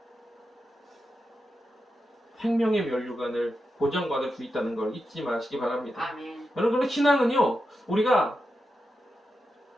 생명의 면류관을 보장받을 수 있다는 걸 잊지 마시기 바랍니다. 아멘. 여러분, 신앙은요, 우리가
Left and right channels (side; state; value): both; normal; correlation 0.88